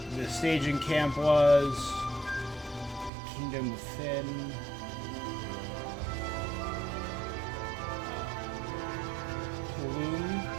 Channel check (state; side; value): drops out; left; at 3.1 s